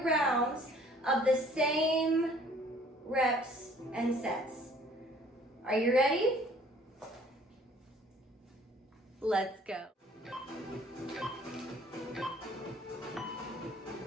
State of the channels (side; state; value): both; normal; correlation 0.56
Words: rounds of the same reps and sets. Are you ready? Let's go.